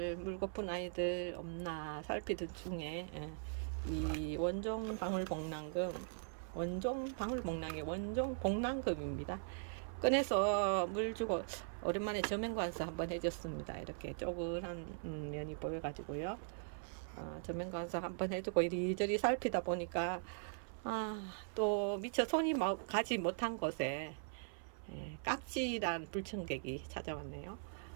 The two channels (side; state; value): left; silent; 51 dB below the other